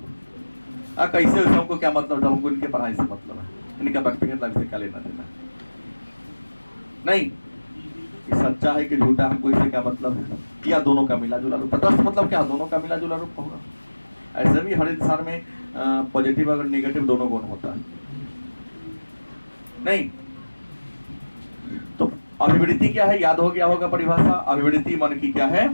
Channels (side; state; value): both; inverted; correlation -1.00